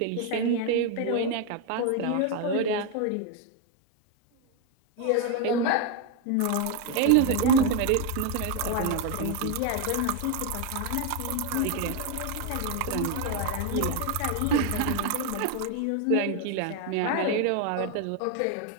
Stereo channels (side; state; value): both; different; correlation 0.01